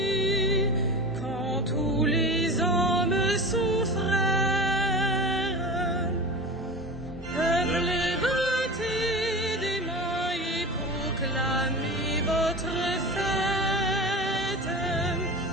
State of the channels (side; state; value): both; normal; correlation 0.30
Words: quand tous les hommes sont frères. Peuple, battez des mains et proclamez votre fête.